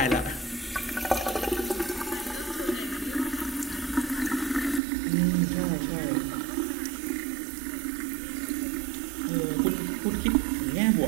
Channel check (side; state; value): left; drops out; at 4.8 s